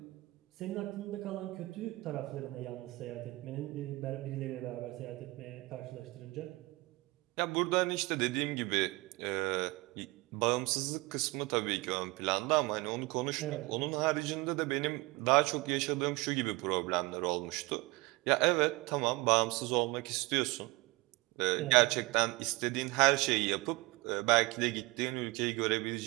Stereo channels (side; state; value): left; quieter; 23.1 dB